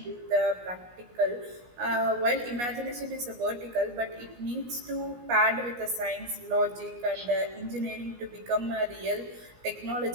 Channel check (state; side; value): late; left; 17 ms